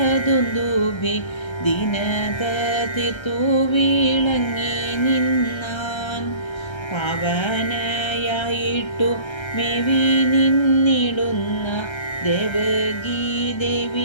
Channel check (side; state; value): right; late; 1.3 ms